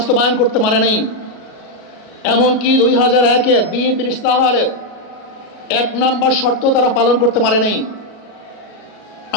করতে পারে নাই। এমনকি 2001-এ বিএনপির ইশতেহারের 1 নম্বর শর্ত তারা পালন করতে পারে নাই।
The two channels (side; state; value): right; late; 37 ms